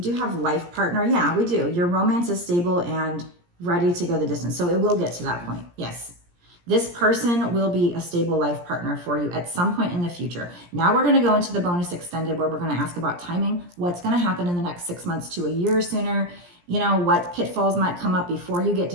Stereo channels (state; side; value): late; left; 17 ms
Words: do have life partner. Yeah, we do. Your romance is stable and ready to go the distance. So it will get to that point. Yes. This person will be a stable life partner for you at some point in the future. Now we're going to go into the bonus extended where we're going to ask about timing. What's going to happen in the next 6 months to a year sooner? You know, what pitfalls might come up before you get